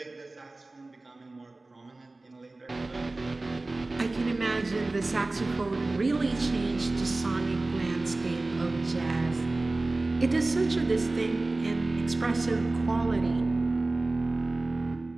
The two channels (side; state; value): left; quieter; 3.1 dB